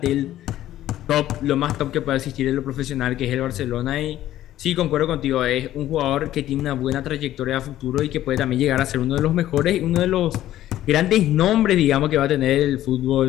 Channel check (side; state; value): right; quieter; 13.4 dB